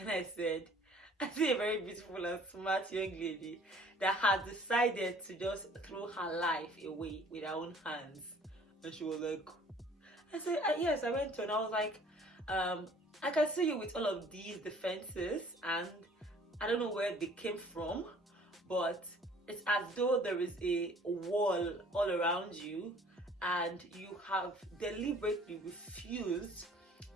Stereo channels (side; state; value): both; normal; correlation 0.54